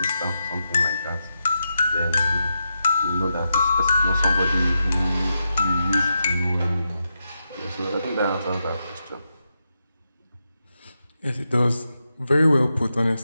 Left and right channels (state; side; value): inverted; both; correlation -0.86